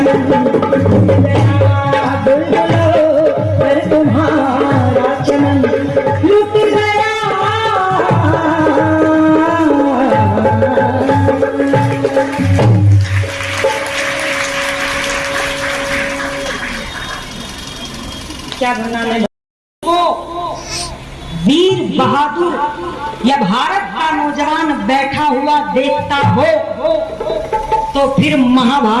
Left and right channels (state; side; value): identical; both; correlation 1.00